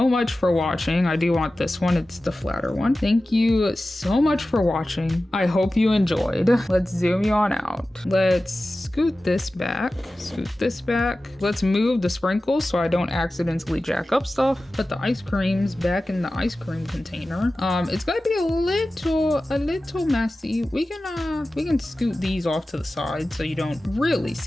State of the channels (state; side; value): normal; both; correlation 0.95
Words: much for watching. I do want this one. It's the flatter one. Thank you so much for watching. I hope you enjoyed. Let's zoom you on out. Let's scoot this back, Let's move the sprinkles so I don't accidentally jack up stuff. Put the ice creams back in the ice cream container. It's gonna be a little messy. We can scoot these off to the side so you don't really